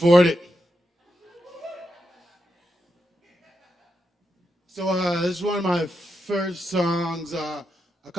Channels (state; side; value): normal; both; correlation 0.85